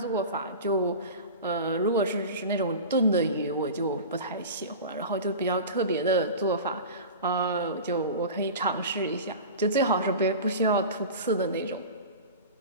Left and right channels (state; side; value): inverted; both; correlation -0.32